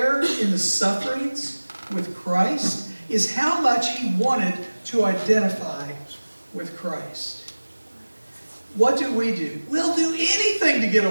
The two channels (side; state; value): both; inverted; correlation -1.00